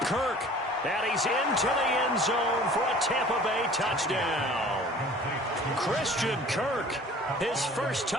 And he's into the end zone for a Tampa Bay touchdown. Christian Kirk, his first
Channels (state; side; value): normal; both; correlation 0.47